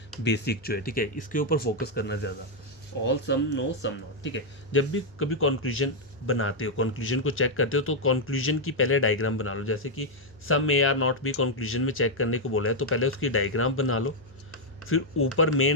बेसिक जो है, ठीक है, इसके ऊपर फोकस करना ज़्यादा, all, some, no, some not, ठीक है। जब भी कभी कंक्लूजन बनाते हो, कंक्लूजन को चेक करते हो, तो कंक्लूजन की पहले डायग्राम बना लो। जैसे कि सम ए आर नॉट भी कंक्लूजन में चेक करने को बोला है, तो पहले उसकी डायग्राम बना लो, फिर ऊपर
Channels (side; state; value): left; noise; hum, 28 dB below the sound